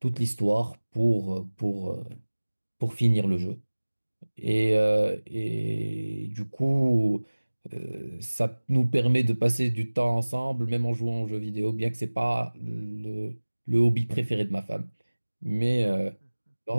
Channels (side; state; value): both; inverted; correlation -1.00